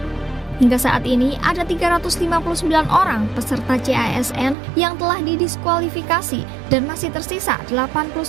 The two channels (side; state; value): left; drops out; at 4.5 s